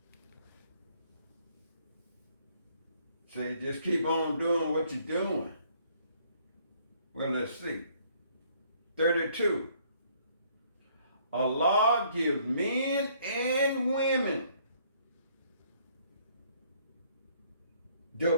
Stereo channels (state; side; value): inverted; both; correlation -0.64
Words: Say, just keep on doing what you're doing. Well, let's see. 32, Allah gives men and women the